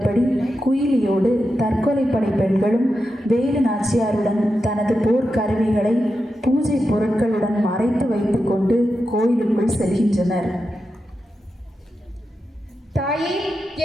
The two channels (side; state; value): both; normal; correlation 0.89